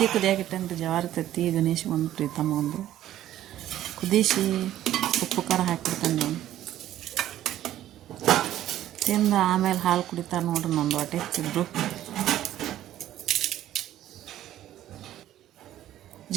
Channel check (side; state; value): left; quieter; 12.8 dB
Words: ಕುದಿಯಾಗಿಟ್ಟಂತ ಜವಾರಿ ತತ್ತಿ. ಗಣೇಶ್ ಒಂದು, ಪ್ರೀತಮ್ಮ ಒಂದು ಕುದಿಸಿ ಉಪ್ಪು ಖಾರ ಹಾಕಿಬಿಡ್ತಾನೆ ನಾವು. ತಿಂದು ಆಮೇಲೆ ಹಾಲು ಕುಡಿತಾರೆ ನೋಡ್ರಿ. ನಂದು ಹೊಟ್ಟೆ ಹೆಚ್ಚಿದ್ರು.